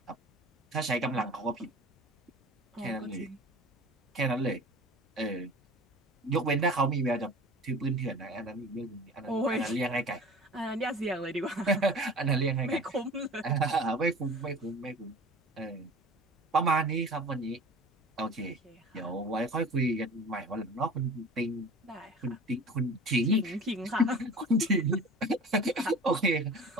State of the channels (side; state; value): both; normal; correlation 0.41